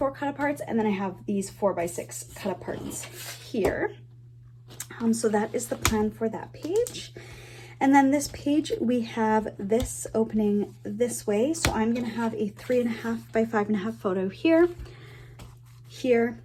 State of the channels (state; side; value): identical; both; correlation 1.00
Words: cut aparts, and then I have these 4x6 cut aparts here. So that is the plan for that page. And then this page, we have this opening this way. So I'm gonna have a 3.5 by 5.5 photo here, here,